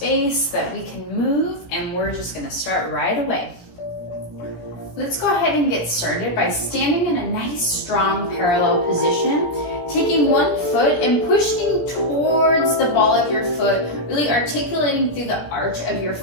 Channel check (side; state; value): right; late; 17 ms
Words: that we can move, and we're just going to start right away. Let's go ahead and get started by standing in a nice strong parallel position, taking one foot and pushing towards the ball of your foot, really articulating through the arch of your